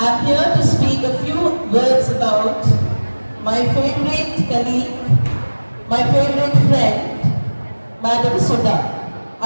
I'm here to speak a few words about my favorite colleague, my favorite friend, Madam Sudha.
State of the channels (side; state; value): both; inverted; correlation -1.00